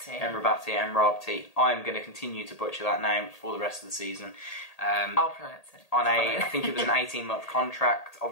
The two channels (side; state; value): right; late; 1.8 ms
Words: I'm going to continue to butcher that name for the rest of the season. I'll pronounce it. I think it was an 18-month contract,